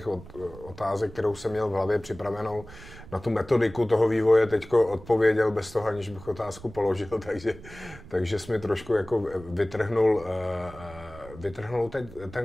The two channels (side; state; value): right; noise; rumble, 17 dB below the sound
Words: otázek, kterou jsem měl v hlavě připravenou na tu metodiku toho vývoje, teďko odpověděl bez toho, aniž bych otázku položil, takže jsi mi trošku jako vytrhnul